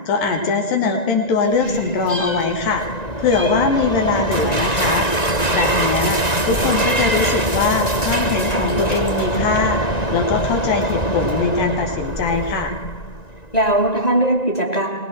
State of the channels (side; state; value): right; late; 1.9 ms